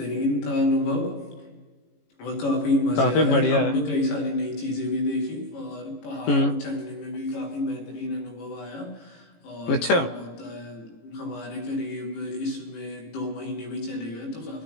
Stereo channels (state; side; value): late; right; 18 ms